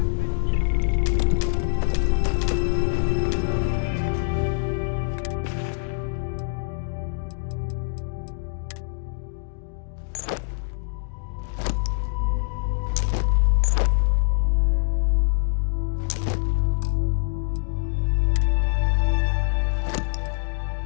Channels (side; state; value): right; silent; digital silence